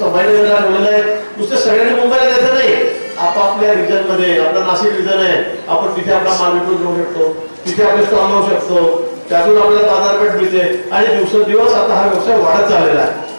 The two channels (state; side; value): inverted; both; correlation -1.00